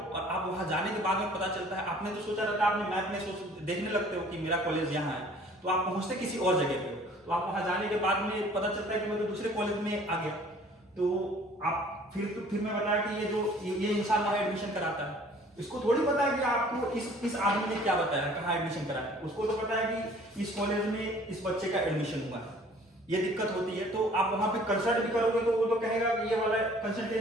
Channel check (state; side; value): normal; both; correlation 0.53